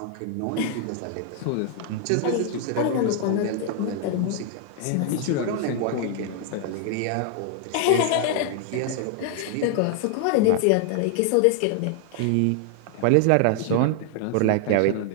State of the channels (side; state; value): both; different; correlation 0.00